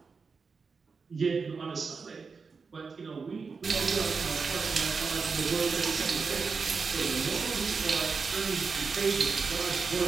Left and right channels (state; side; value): quieter; left; 5.0 dB